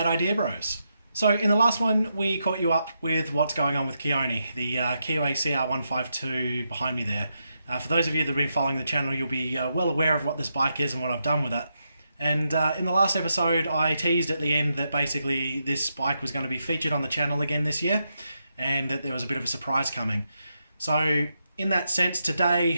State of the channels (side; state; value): both; inverted; correlation -0.83